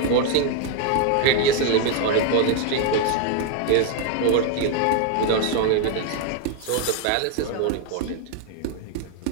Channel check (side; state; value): both; different; correlation 0.00